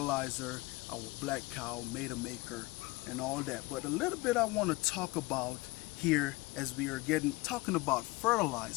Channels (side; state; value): right; quieter; 22.5 dB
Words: our black cow, Maida Maker, and all that. But a little bit I want to talk about here as we are talking about